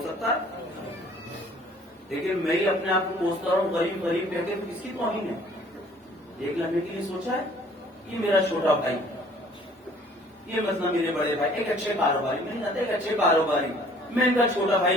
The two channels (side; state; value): both; normal; correlation 0.55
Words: سکتا ہے, لیکن میں ہی اپنے آپ کو کوستا ہوں غریب غریب کہہ کے, کس کی توہین ہے؟ ایک لمحے کے لیے سوچا ہے یہ میرا چھوٹا بھائی, یہ مسئلہ میرے بڑے بھائی ایک اچھے کاروباری میں نہیں جانتا، ایک اچھے کاروباری میں ان کا چھوٹا